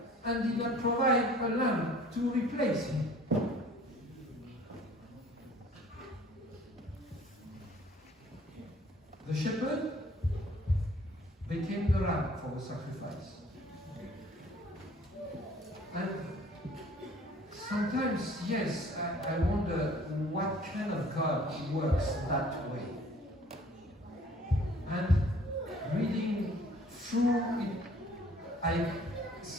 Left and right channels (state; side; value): normal; both; correlation 0.53